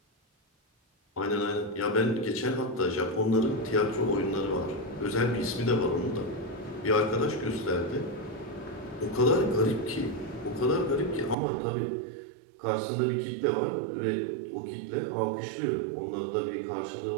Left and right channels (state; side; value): drops out; left; at 11.4 s